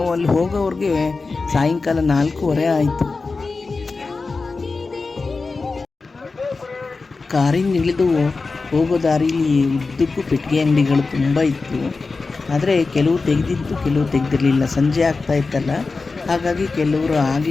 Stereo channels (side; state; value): right; quieter; 4.0 dB